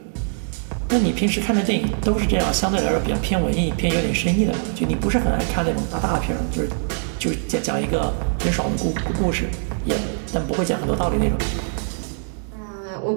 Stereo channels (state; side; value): silent; left; digital silence